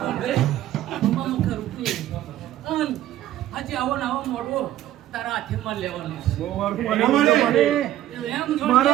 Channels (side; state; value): left; quieter; 13.2 dB